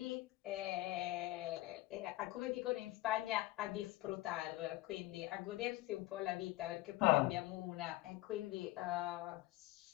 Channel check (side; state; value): right; quieter; 17.8 dB